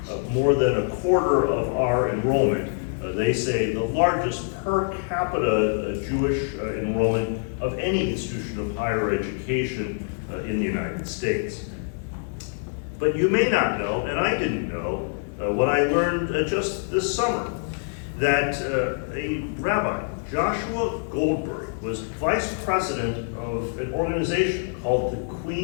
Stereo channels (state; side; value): silent; right; digital silence